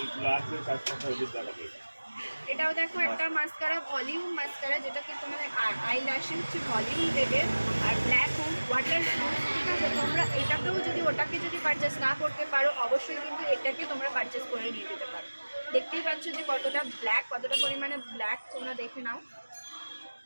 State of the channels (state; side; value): inverted; both; correlation -1.00